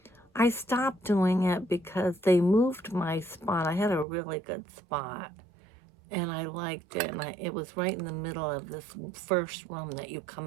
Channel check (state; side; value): drops out; left; at 4.0 s